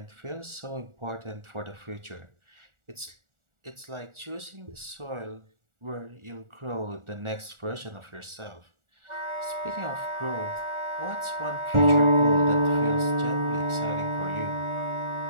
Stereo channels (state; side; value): late; left; 1.4 ms